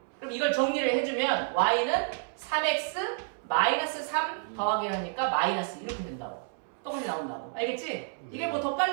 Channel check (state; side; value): silent; left; 58 dB below the other